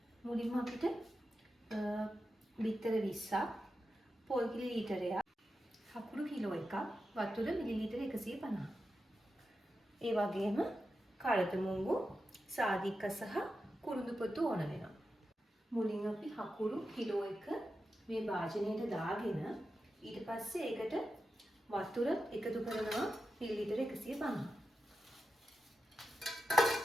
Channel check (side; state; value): both; normal; correlation 0.90